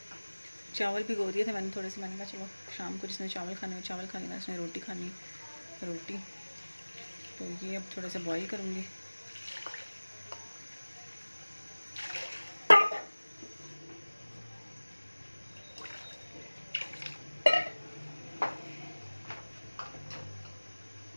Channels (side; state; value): both; inverted; correlation -1.00